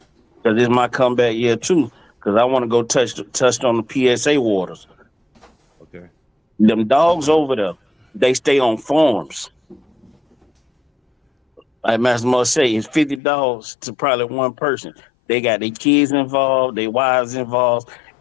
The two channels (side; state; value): right; drops out; at 13.2 s